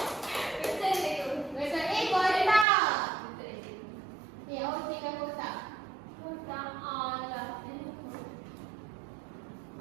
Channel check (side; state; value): left; drops out; at 2.7 s